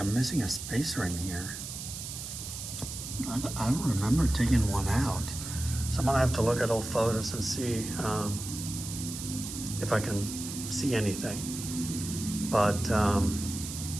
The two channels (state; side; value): noise; right; hiss, 8 dB below the sound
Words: missing a spacer in here. I don't remember taking one out. So I'm gonna have to look at old photos and see if I can see anything. But other